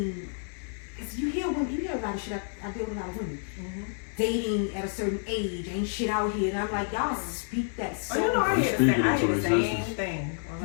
Because you hear women, you hear a lot of shit. I deal with a lot of women. Dating at a certain age ain't shit out here, and I'm like, y'all speak that so. Oh, you know, I hear the Speaking same into thing.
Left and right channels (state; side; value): silent; right; 59 dB below the other